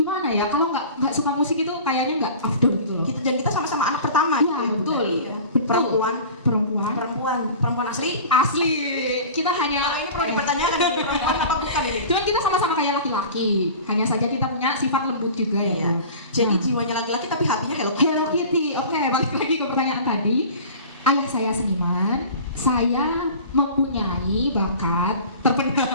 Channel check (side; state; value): both; inverted; correlation -0.39